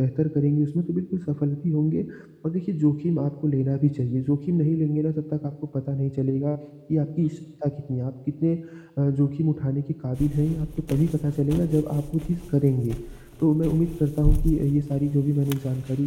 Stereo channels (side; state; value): both; identical; correlation 1.00